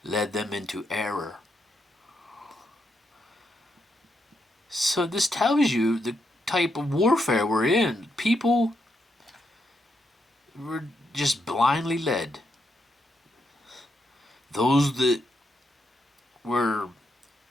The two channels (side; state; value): both; normal; correlation 0.80